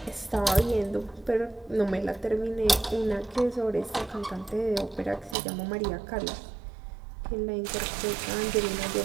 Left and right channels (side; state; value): left; drops out; at 5.4 s